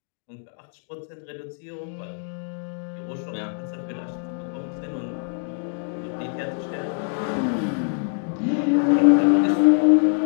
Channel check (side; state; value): right; silent; 62 dB below the other